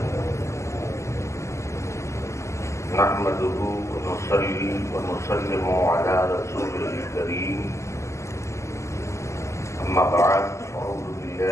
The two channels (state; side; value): late; right; 0.14 ms